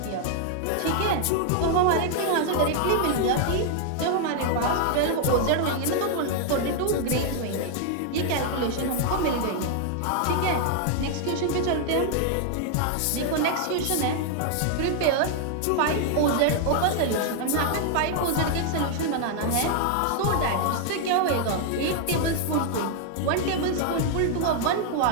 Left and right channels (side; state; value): both; different; correlation 0.00